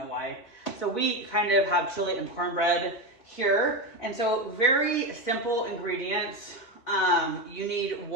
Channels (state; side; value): late; right; 4.1 ms